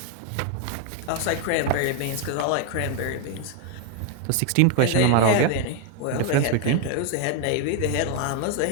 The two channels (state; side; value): different; both; correlation 0.01